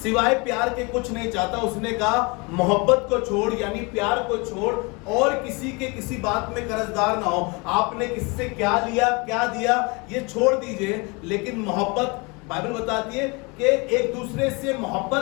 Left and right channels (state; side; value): quieter; right; 28.7 dB